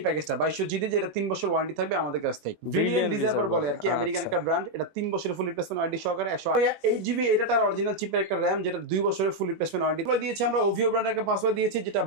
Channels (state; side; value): late; left; 19 ms